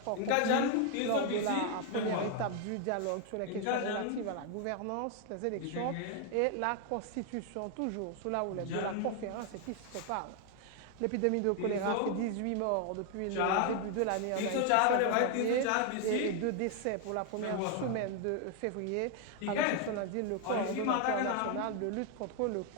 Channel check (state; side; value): different; both; correlation 0.00